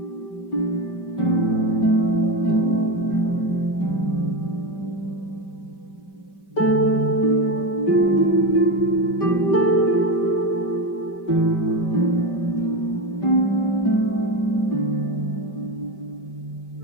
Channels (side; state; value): right; late; 5.2 ms